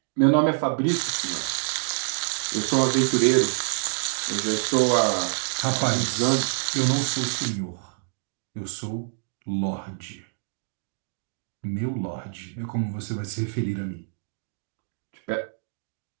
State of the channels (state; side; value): silent; left; digital silence